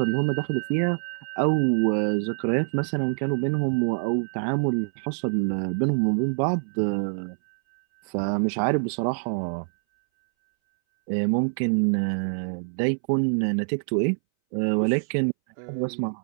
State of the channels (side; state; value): left; silent; 61 dB below the other